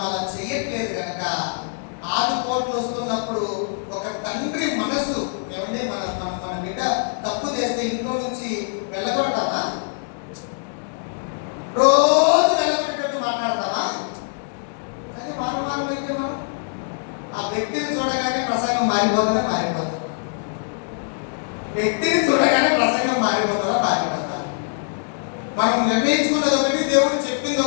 అలా చెయ్యట్లేదు కనుక ఆదుకోట్లు వస్తున్నప్పుడు ఒక తండ్రి మనసు ఏమంటే మన బిడ్డ తప్పు చేస్తే ఇంట్లో నుంచి వెళ్ళగొడతామా? రోజు వెళ్ళగొట్టేటట్టు మాట్లాడతామా? అదే వారం అయితే మనం ఆ వ్యక్తిని చూడగానే ప్రసంగం మారిపోతుందా? వ్యక్తిని చూడగానే ప్రసంగం మారిపోతుందా? మనం నిర్ణయించుకున్నది ఒకటి, దేవుడు చెప్పింది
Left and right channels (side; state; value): right; silent; 63 dB below the other